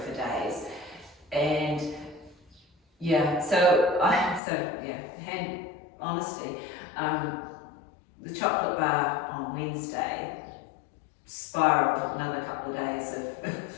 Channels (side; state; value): right; drops out; at 4.4 s